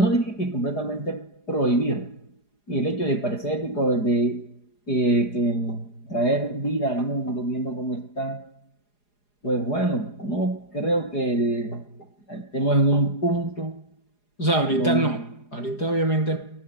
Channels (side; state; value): right; late; 4.8 ms